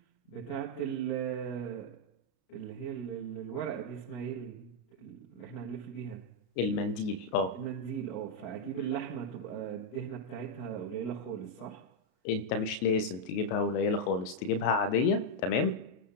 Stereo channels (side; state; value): right; late; 33 ms